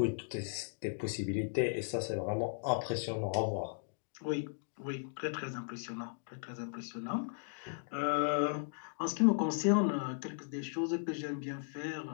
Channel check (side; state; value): right; silent; digital silence